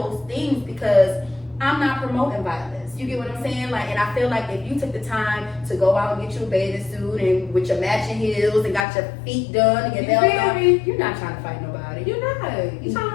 things because I'm not promoting violence. You get what I'm saying? Like, and I feel like if you took the time to go out and get you a bathing suit and with your matching heels and got your feet done and your nails done, you're not trying to fight nobody. You're not. You're trying to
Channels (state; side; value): drops out; right; at 8.8 s